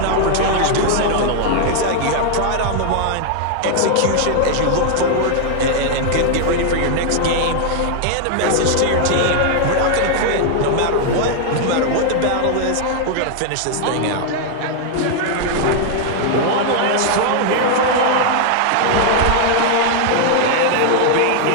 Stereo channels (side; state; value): both; different; correlation 0.00